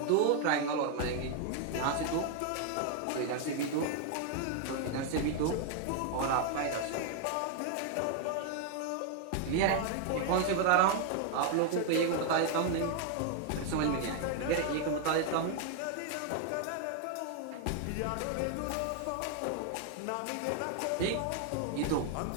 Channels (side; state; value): both; different; correlation 0.00